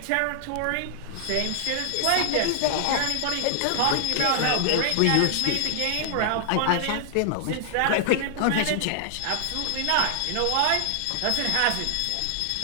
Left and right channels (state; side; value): different; both; correlation 0.00